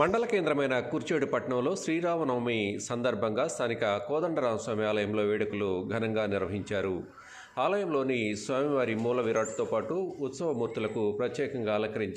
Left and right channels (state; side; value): identical; both; correlation 1.00